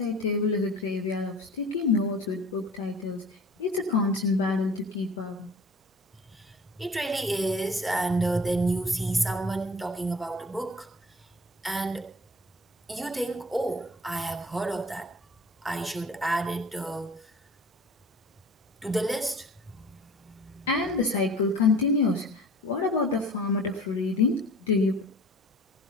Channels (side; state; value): both; normal; correlation 0.45